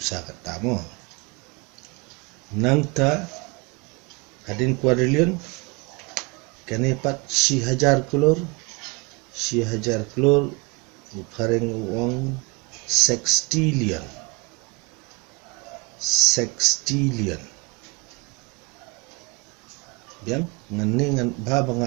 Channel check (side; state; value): left; quieter; 27.6 dB